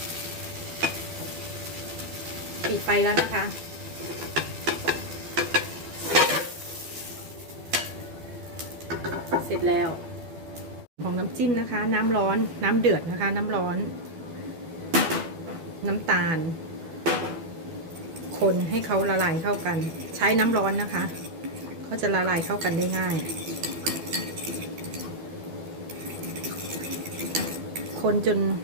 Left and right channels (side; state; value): left; late; 12 ms